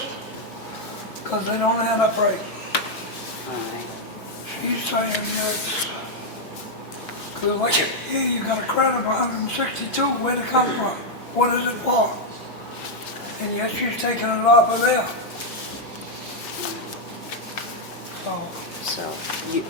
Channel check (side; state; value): both; normal; correlation 0.00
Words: because they don't add up right. All right. She's saying it's, because like here you got a credit of 162, where'd it come from? What is it for? And yet she's taking it off of there. So, So you,